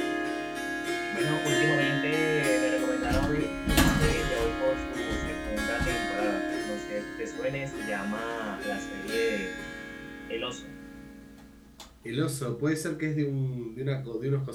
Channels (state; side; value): identical; both; correlation 1.00